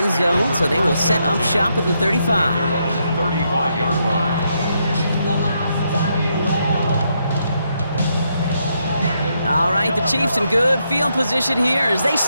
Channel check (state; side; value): inverted; both; correlation -0.79